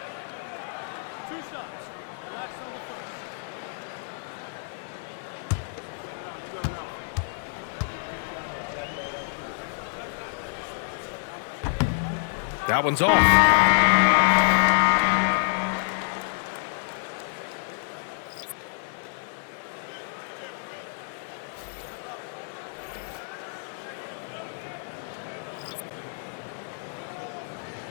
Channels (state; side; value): silent; right; 57 dB below the other